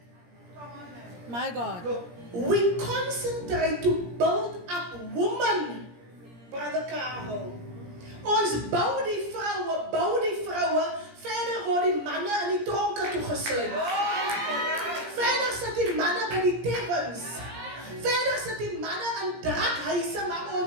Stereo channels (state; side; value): late; left; 17 ms